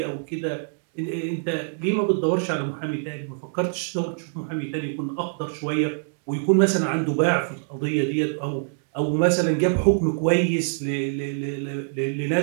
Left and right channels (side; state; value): left; silent; digital silence